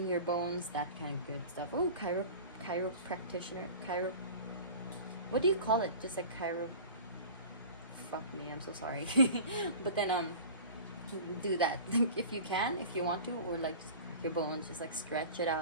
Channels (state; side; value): inverted; both; correlation -0.39